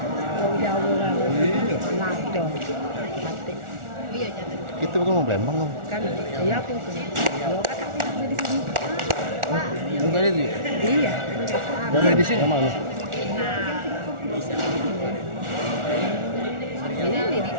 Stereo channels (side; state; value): left; late; 1.4 ms